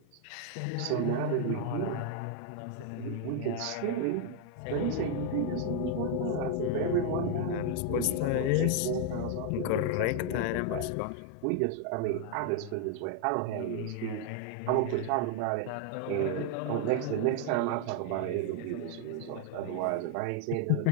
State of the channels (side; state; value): both; different; correlation 0.00